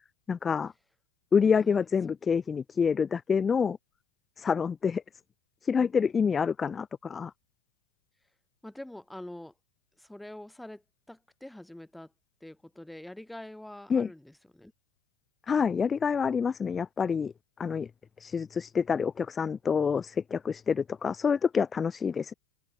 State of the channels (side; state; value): right; quieter; 5.9 dB